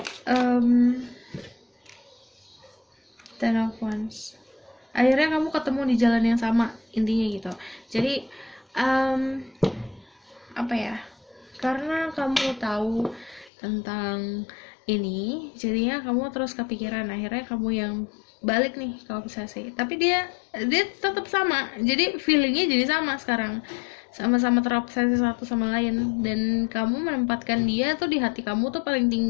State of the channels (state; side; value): drops out; right; at 13.5 s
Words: Ten of Wands. Akhirnya kamu ketemu di jalan yang sama, intinya gitu. Jadi apa ya? Karena kamu tahu tentang ini, jadinya kamu terus kepikiran. Akhirnya kamu yang balik nih ke obsesi. Tapi dia tetap sama. Jadi feelingnya jadi sama sekarang. Sama-sama terobsesi satu sama lain, dan kamu menempatkan dia tuh di hati kamu tuh paling